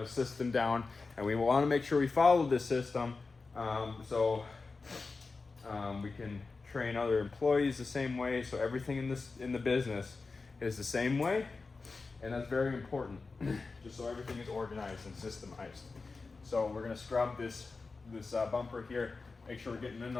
a system down, and we want to make sure we follow this system so we can train other employees the same way. So everything in the business is the same way, and that's very important, just so everything is organized and systemized. So we're going to scrub this bumper here, make sure we're getting in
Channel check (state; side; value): quieter; right; 4.1 dB